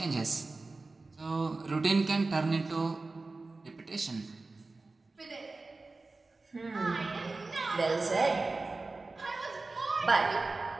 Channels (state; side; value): quieter; left; 3.5 dB